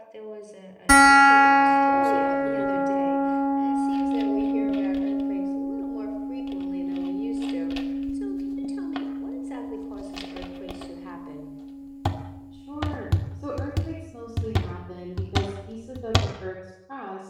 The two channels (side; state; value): both; identical; correlation 1.00